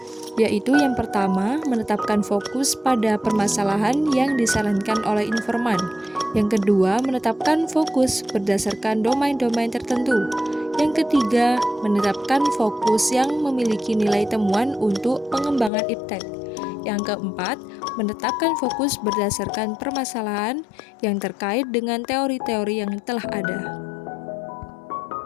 yaitu yang pertama, menetapkan fokus pada permasalahan yang disarankan oleh informan. Yang kedua, menetapkan fokus berdasarkan domain-domain tertentu. Yang ketiga, menetapkan fokus yang memiliki nilai temuan untuk pengembangan iptek. Yang keempat, menetapkan fokus berdasarkan permasalahan yang terkait dengan teori-teori yang telah ada.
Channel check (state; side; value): drops out; right; at 15.7 s